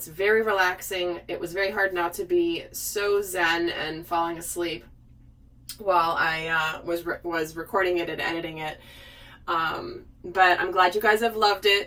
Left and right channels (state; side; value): identical; both; correlation 1.00